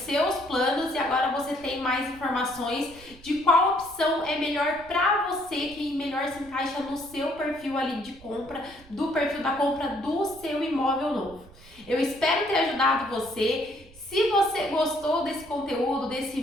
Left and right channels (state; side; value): noise; right; rumble, 22 dB below the sound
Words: planos, e agora você tem mais informações de qual opção é melhor para você, que melhor se encaixa no seu perfil ali de compra, do perfil da compra do seu imóvel novo. Eu espero ter ajudado você. Se você gostou desse conteúdo, desse